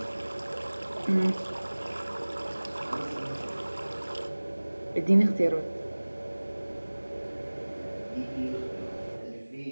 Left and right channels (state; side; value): inverted; both; correlation -1.00